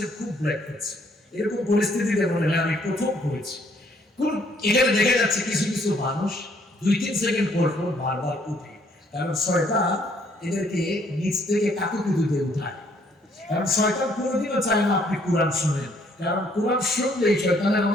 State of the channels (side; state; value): both; normal; correlation 0.66